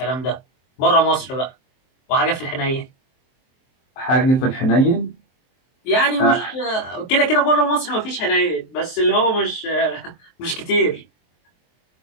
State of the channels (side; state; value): right; late; 23 ms